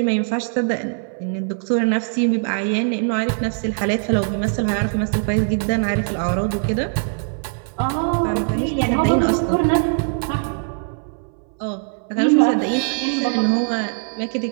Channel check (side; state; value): left; silent; 61 dB below the other